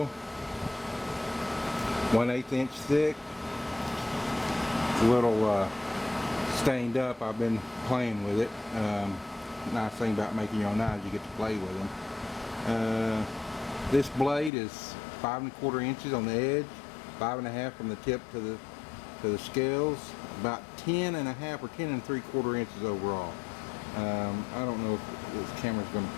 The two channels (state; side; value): drops out; right; at 14.5 s